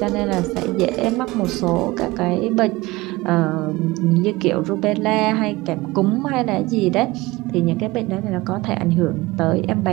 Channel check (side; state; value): left; quieter; 20.7 dB